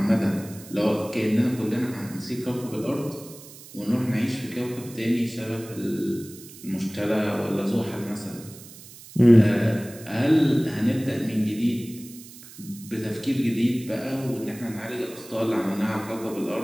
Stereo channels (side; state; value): right; noise; hiss, 18 dB below the sound